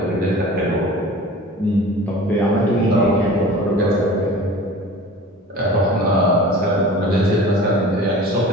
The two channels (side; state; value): both; normal; correlation 0.40